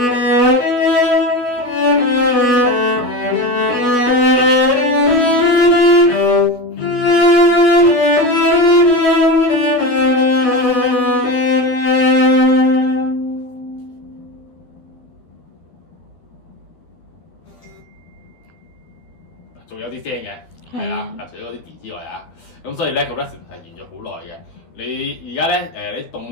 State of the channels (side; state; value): right; late; 12 ms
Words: 有啲聲嘅，係啦，除咗嗰啲 D 之外啊，咁所以咧個 resonance 係沿咗好耐嘅。你而家咧你